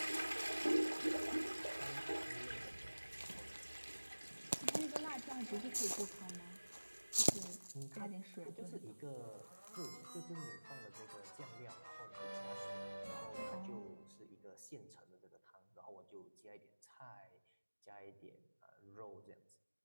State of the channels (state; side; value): inverted; both; correlation -1.00